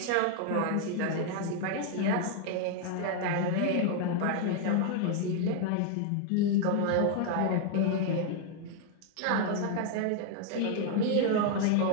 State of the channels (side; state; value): both; different; correlation 0.00